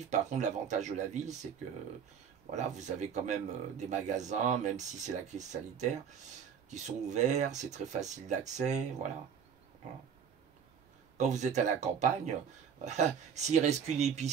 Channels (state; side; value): quieter; left; 7.4 dB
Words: Par contre, l'avantage de la ville, c'est que voilà, vous avez quand même des magasins, même si c'est la crise sanitaire, qui sont ouverts, c'est très facile d'accès, voilà. Voilà. Quand vous êtes à la campagne, s'il reste qu'une